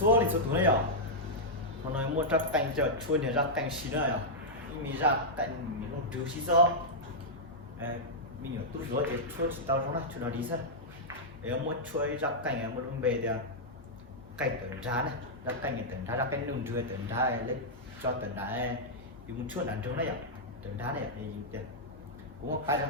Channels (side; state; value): both; normal; correlation -0.07